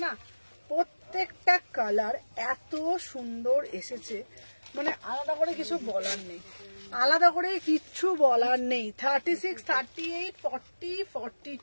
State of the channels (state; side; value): inverted; both; correlation -1.00